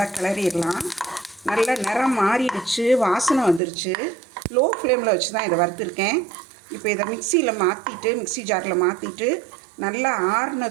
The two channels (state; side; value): drops out; left; at 3.6 s